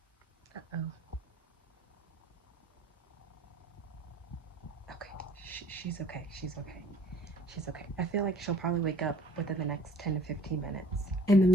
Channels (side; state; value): both; normal; correlation 0.54